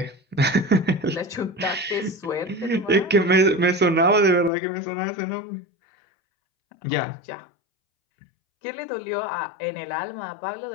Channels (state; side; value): drops out; right; at 4.5 s